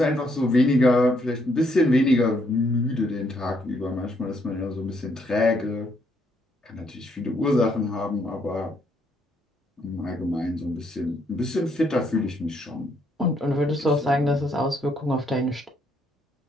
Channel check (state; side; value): normal; both; correlation 0.72